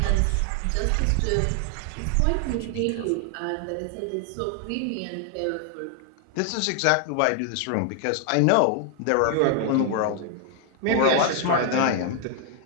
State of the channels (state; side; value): different; both; correlation 0.00